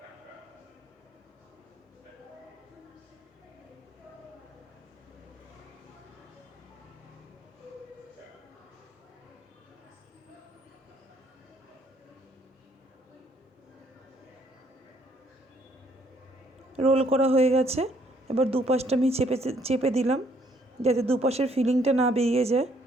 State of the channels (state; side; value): normal; both; correlation 0.67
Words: রোল করা হয়ে গেছে। এবার দুপাশটা আমি চেপে চেপে দিলাম যাতে দুপাশের ফিলিংটা না বেরিয়ে যায়।